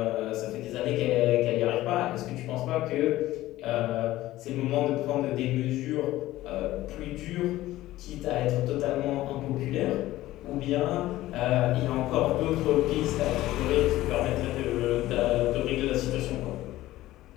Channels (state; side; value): quieter; right; 16.0 dB